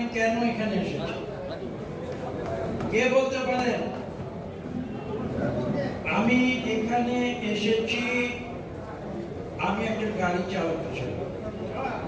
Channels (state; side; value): identical; both; correlation 1.00